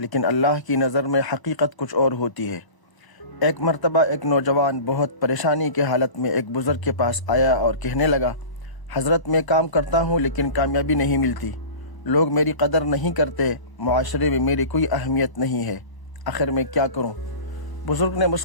اللہ کی نظر میں حقیقت کچھ اور ہوتی ہے۔ ایک مرتبہ ایک نوجوان بہت پریشانی کے حالت میں ایک بزرگ کے پاس آیا اور کہنے لگا، حضرت میں کام کرتا ہوں لیکن کامیابی نہیں ملتی، لوگ میری قدر نہیں کرتے، معاشرے میں میری کوئی اہمیت نہیں ہے، آخر میں کیا کروں؟ بزرگ نے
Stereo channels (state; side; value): late; right; 1.0 ms